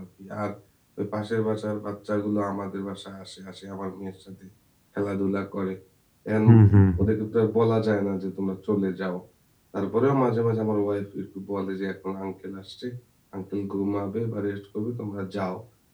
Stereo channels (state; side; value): identical; both; correlation 1.00